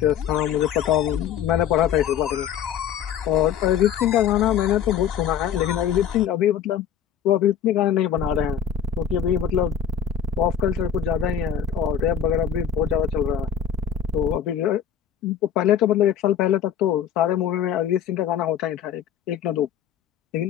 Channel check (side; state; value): right; quieter; 8.6 dB